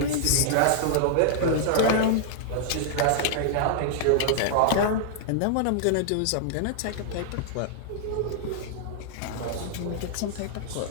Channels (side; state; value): both; different; correlation -0.01